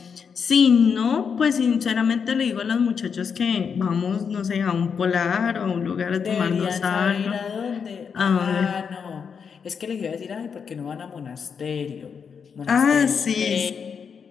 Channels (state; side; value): quieter; right; 6.4 dB